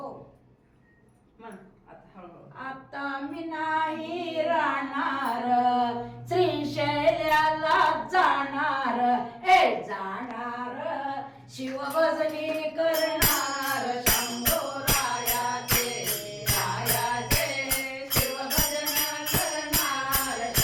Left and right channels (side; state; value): both; identical; correlation 1.00